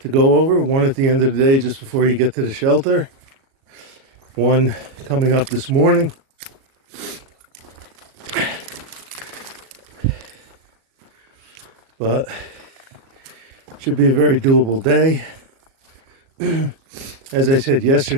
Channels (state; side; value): late; left; 37 ms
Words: to go over. One at the end of the day just before you get to the shelter. One coming up this morning. But should be a very doable day. As I said